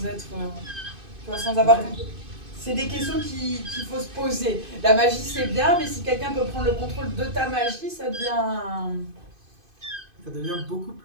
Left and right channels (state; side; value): late; left; 2.5 ms